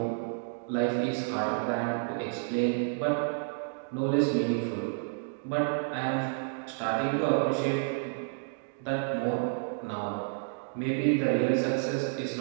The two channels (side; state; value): left; silent; digital silence